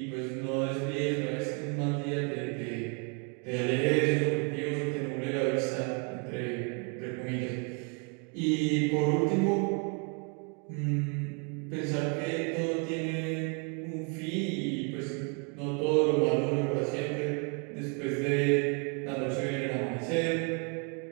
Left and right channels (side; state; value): left; quieter; 35.4 dB